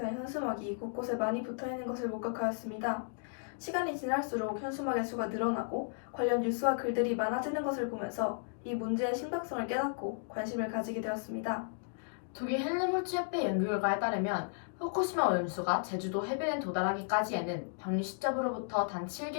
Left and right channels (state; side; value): silent; right; digital silence